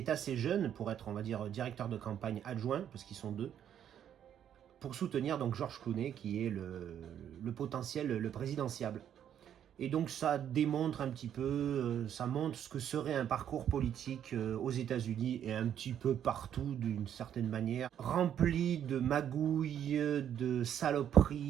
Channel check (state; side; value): quieter; left; 9.7 dB